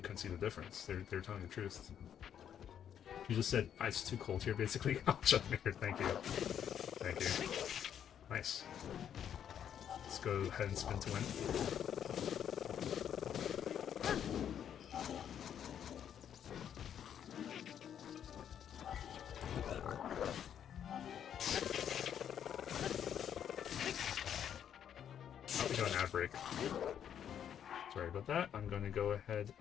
see the difference. They're telling the truth. You just said it's too cold here, basically. Oh, Chuckmaker, thank you, thank you, nice. Let's go ahead and spin to win. Break. Sorry about that. I'm going to go ahead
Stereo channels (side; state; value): right; quieter; 9.1 dB